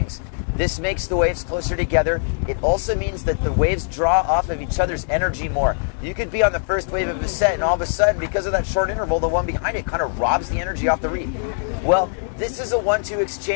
This makes the waves closer together. It also means that the waves draw off of each other's energy more. You could be on the first wave of a set, and all of a sudden, because of that short interval, the one behind it kind of robs the energy off the reef. Well, this is a 1-2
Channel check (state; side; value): silent; right; digital silence